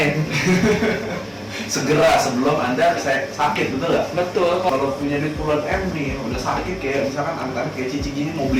Segera sebelum Anda sakit, betul nggak? Betul. Kalau punya duit puluhan M nih, udah sakit kayak misalkan angka kayak Cici gini, mau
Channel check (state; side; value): identical; both; correlation 1.00